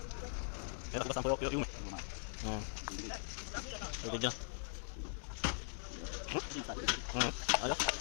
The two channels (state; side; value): silent; right; digital silence